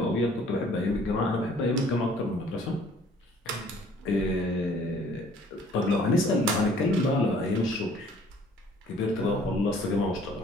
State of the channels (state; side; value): normal; both; correlation 0.56